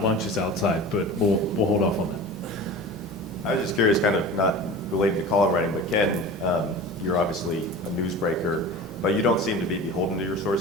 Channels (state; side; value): normal; both; correlation 0.35